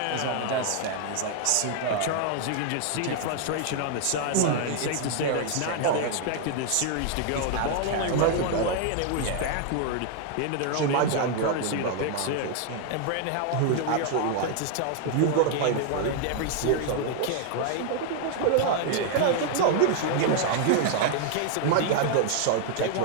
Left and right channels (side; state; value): both; different; correlation 0.00